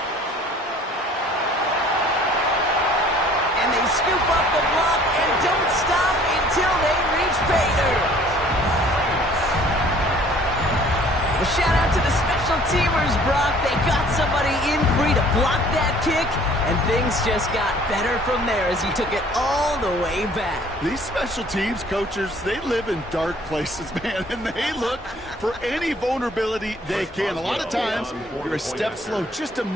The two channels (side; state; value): both; normal; correlation 0.54